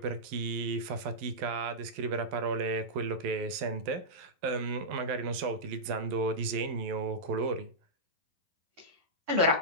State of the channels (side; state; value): left; late; 11 ms